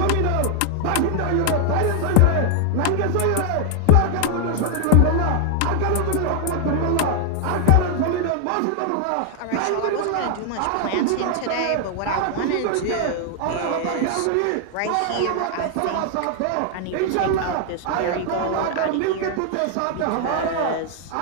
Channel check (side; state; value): both; different; correlation 0.00